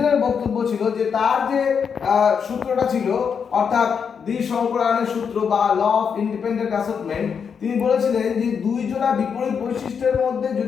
বক্তব্য ছিল যে তার যে সূত্রটা ছিল অর্থাৎ দ্বি সংকরায়নের সূত্র বা ল অফ ইন্ডিপেন্ডেন্ট অ্যাসর্টমেন্ট, তিনি বলেছিলেন যে দুই জোড়া বিপরীত বৈশিষ্ট্যের মধ্যে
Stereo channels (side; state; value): right; quieter; 6.6 dB